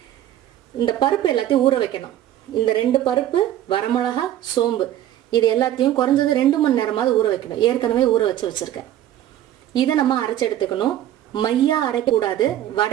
இந்த பருப்பு எல்லாத்தையும் ஊற வைக்கணும். இந்த 2 பருப்பு, வரமிளகா, சோம்பு இது எல்லாத்தையும் குறைஞ்சது 2 மணி நேரமாவது ஊற வைக்கணும். ஏற்கனவே ஊற வச்சிருக்கேன். இதை நம்ம அரைச்சி எடுத்துக்கணும். மையா அரைக்கக்கூடாது,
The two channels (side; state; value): left; quieter; 12.3 dB